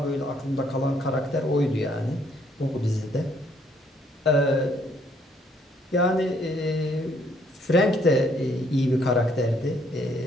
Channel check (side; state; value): both; normal; correlation 0.67